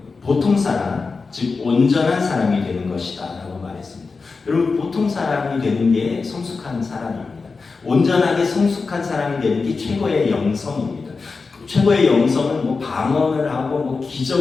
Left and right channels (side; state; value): right; quieter; 4.4 dB